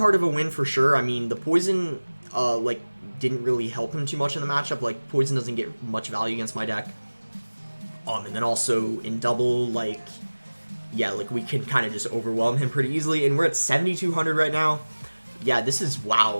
of a win for sure. I mean, the poison, like, didn't really help him too much in the matchup. Like, poison doesn't get much value against my deck. And then also in double, like, yeah, like, we can kind of just overwhelm him pretty easily. And we're at 7,200 right now. Yeah, this is,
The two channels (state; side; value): inverted; both; correlation -1.00